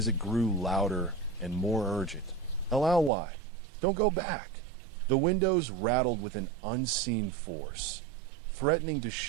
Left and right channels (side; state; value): left; drops out; at 3.1 s